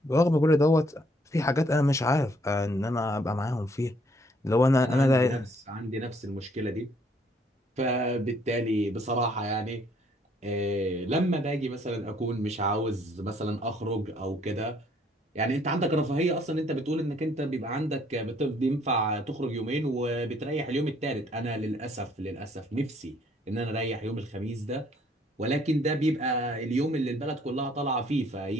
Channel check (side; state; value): both; normal; correlation 0.64